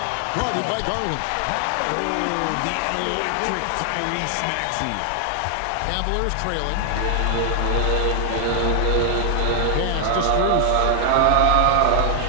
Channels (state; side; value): different; both; correlation 0.00